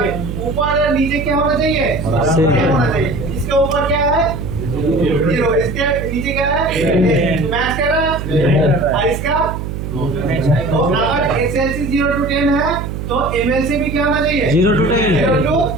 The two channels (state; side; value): noise; right; hum, 6 dB below the sound